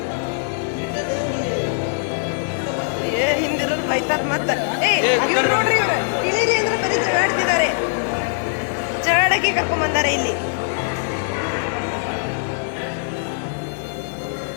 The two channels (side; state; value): right; silent; 65 dB below the other